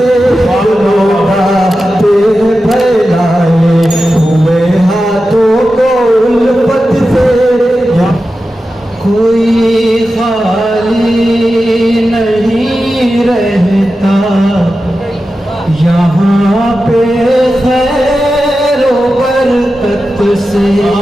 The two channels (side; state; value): both; normal; correlation 0.92